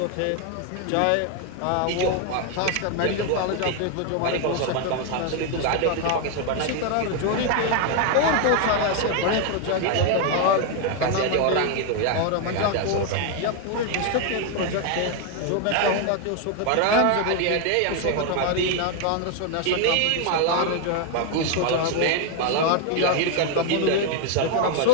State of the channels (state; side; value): different; both; correlation 0.01